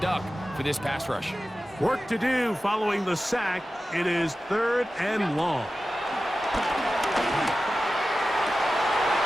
for this pass rush. Work to do following the sack. It is 3rd and long.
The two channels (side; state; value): both; normal; correlation 0.94